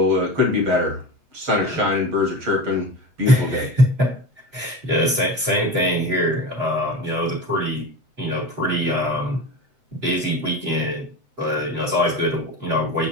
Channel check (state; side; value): late; left; 7.9 ms